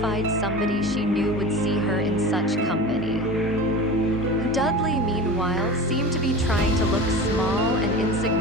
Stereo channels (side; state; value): both; normal; correlation 0.32